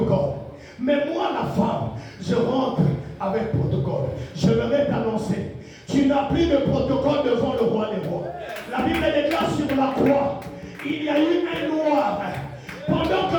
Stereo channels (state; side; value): identical; both; correlation 1.00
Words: Mais moi, la femme, je rentre avec protocole. Je vais t'annoncer. Tu n'as plus de protocole devant le roi des rois. La Bible déclare sur la croix, il y a eu un noir. Pendant